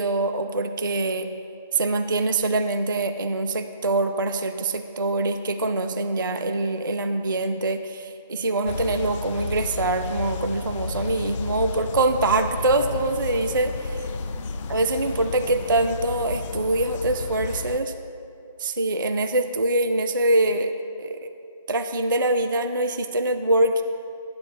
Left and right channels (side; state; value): both; inverted; correlation -0.57